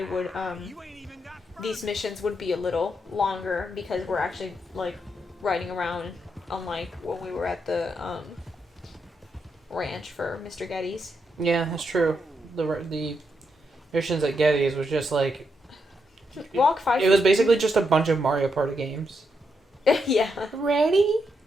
would You ain't even got these missions would be a little longer because we're actually like riding around, unlike when we were at the ranch for Mr. Getty's. Yeah, that's true. The missions at Getty's was just like Walk 5. it was basically just a bunch of Mario Party games. Yeah. Ready?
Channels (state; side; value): normal; both; correlation 0.81